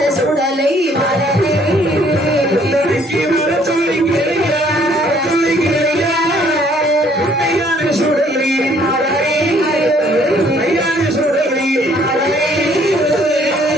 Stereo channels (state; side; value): normal; both; correlation 0.62